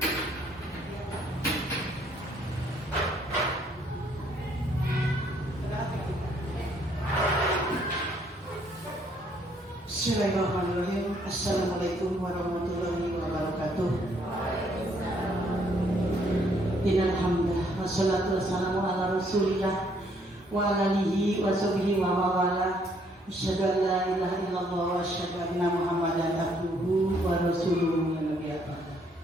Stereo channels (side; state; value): both; normal; correlation 0.67